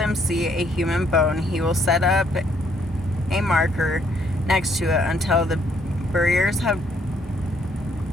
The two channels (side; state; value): both; normal; correlation 0.68